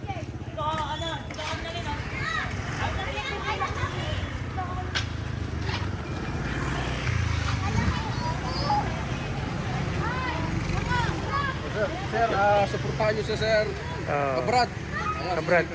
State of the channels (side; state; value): both; identical; correlation 1.00